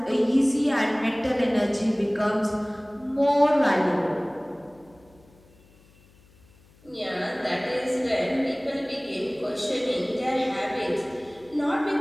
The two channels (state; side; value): noise; left; hum, 28 dB below the sound